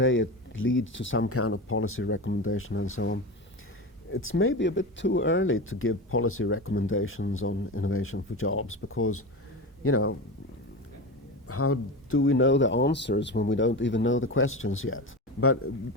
it leads to some kind of policy recommendation and so on. It's maybe a bit too early to give policy recommendations on innovation for jobs because, how do we know the answers when we don't even know the questions yet? But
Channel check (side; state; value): both; normal; correlation 0.24